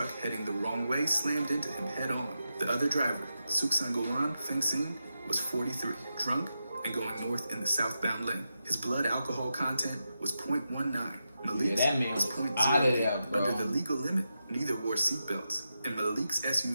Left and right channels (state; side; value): inverted; both; correlation -0.88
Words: heading the wrong way slammed into him head-on. The other driver, Suksangolan Fengsin, was 43, drunk and going north in the southbound lane. His blood alcohol content was 0.19. Malik's was 0.08. Under the legal limit, neither wore seatbelts, and Malik's